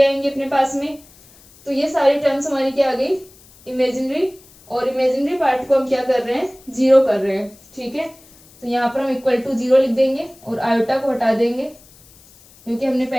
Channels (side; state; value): left; noise; hiss, 26 dB below the sound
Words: अपने पास में। तो ये सारी टर्म्स हमारी क्या आ गई, इमेजिनरी, और इमेजिनरी पार्ट को हम क्या कर रहे हैं, 0 कर रहे हैं। ठीक है, तो यहाँ पर हम इक्वल टू 0 लिख देंगे और आयोटा को हटा देंगे, क्योंकि हमने